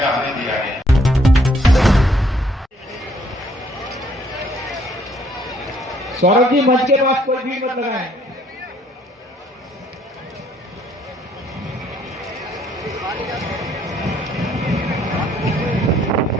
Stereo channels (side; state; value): both; normal; correlation 0.65